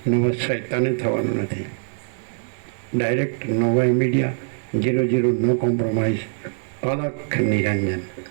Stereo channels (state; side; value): silent; left; digital silence